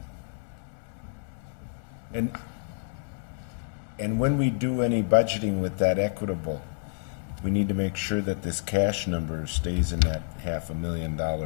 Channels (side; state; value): right; silent; 59 dB below the other